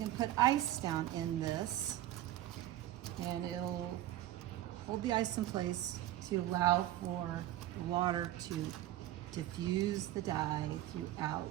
put ice down in this and it'll hold the ice in place to allow for the water to diffuse the dye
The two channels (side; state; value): left; quieter; 14.2 dB